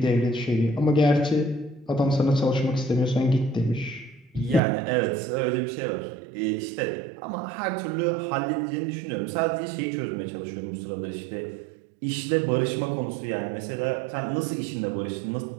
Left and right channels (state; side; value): drops out; left; at 4.6 s